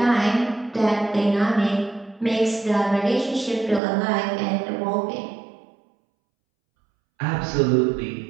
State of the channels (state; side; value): drops out; left; at 3.8 s